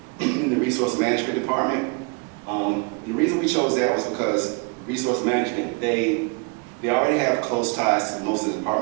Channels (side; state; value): left; quieter; 32.9 dB